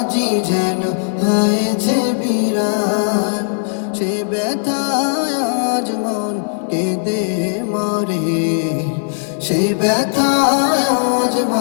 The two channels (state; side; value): silent; right; 67 dB below the other